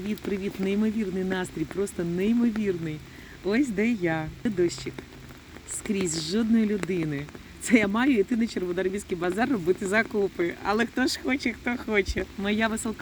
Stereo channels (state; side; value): identical; both; correlation 1.00